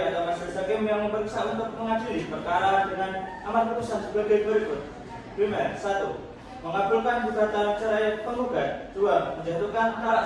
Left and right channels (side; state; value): both; identical; correlation 1.00